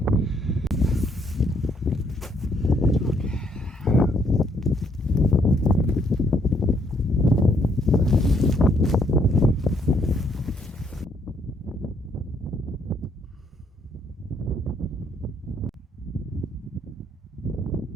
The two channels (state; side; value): normal; both; correlation 0.70